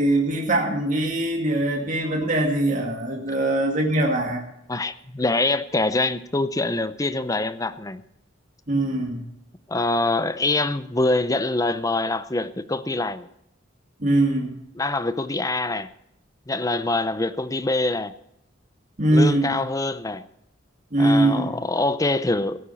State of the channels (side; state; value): both; normal; correlation 0.53